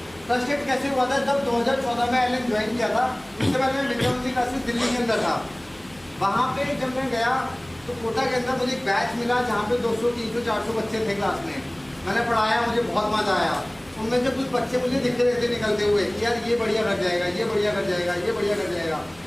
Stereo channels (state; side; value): noise; right; hum, 25 dB below the sound